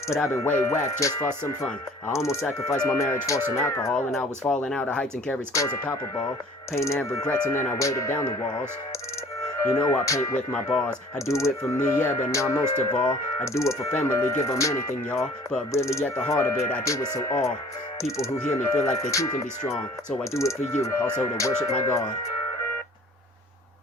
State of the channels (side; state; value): both; normal; correlation 0.51